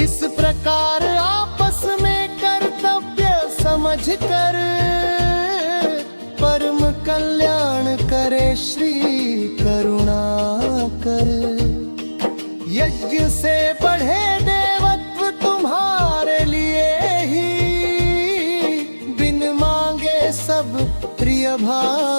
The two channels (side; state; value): both; inverted; correlation -1.00